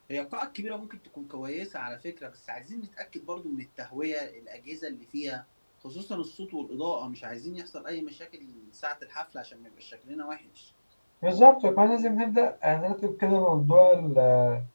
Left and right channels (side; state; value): both; inverted; correlation -1.00